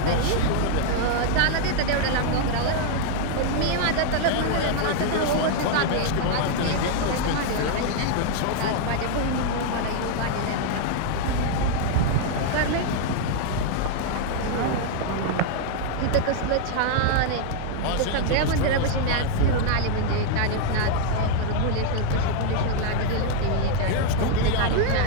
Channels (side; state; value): both; different; correlation 0.00